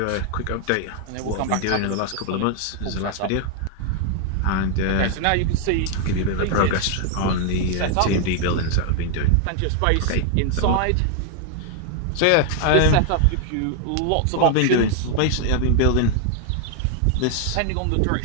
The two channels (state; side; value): different; both; correlation 0.00